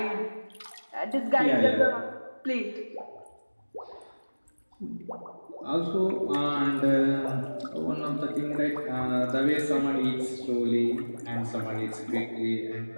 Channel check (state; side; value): inverted; both; correlation -1.00